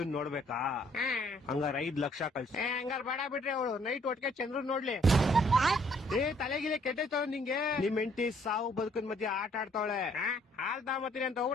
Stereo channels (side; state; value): both; normal; correlation 0.64